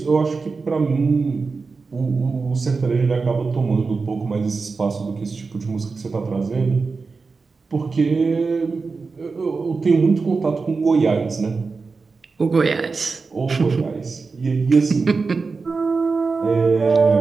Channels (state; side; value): quieter; left; 4.4 dB